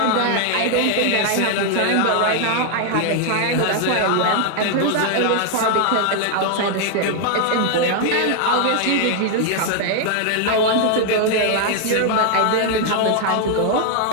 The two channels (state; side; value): different; both; correlation 0.00